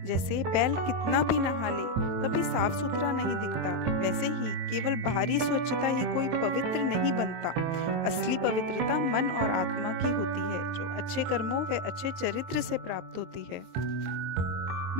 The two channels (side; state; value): left; late; 23 ms